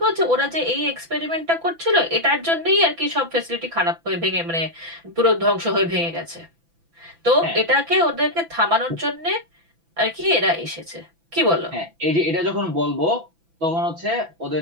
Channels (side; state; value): left; late; 6.0 ms